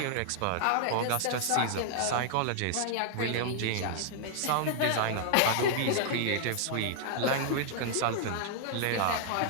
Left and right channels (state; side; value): different; both; correlation -0.01